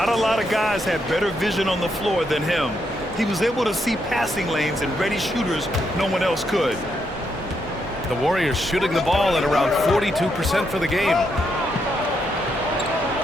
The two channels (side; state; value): both; normal; correlation 0.79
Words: a lot of guys had better vision on the floor than him. He was able to see passing lanes and ready shooters no one else could. The Warriors shooting the ball at around 42% for the game.